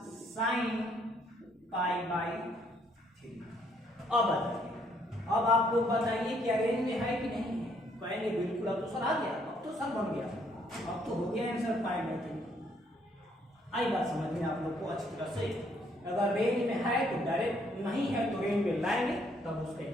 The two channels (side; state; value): both; normal; correlation 0.68